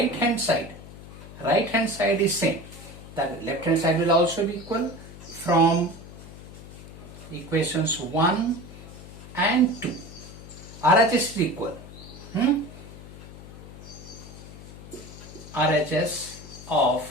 hand side is same. That left hand side will also be equal. From equations 1 and 2, RHS is equal. RHS of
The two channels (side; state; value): left; noise; hum, 15 dB below the sound